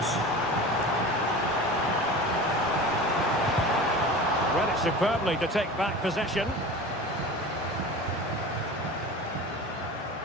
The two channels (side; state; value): both; normal; correlation 0.34